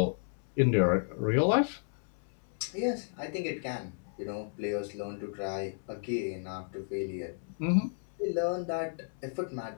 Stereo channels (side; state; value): right; silent; 56 dB below the other